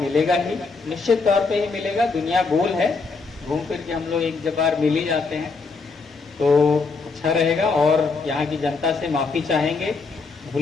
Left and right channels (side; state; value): right; quieter; 4.3 dB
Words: ही, निश्चित तौर पे ही मिलेगा। दुनिया गोल है, घूम फिर के हम लोग एक बार मिल ही जाते हैं, तो अच्छा रहेगा। और यहाँ की जनता से माफ़ी चाहेंगे,